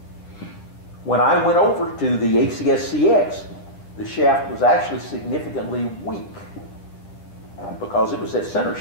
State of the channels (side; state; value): right; late; 9.8 ms